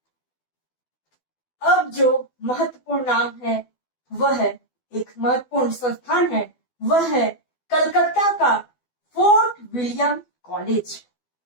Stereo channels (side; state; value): right; late; 12 ms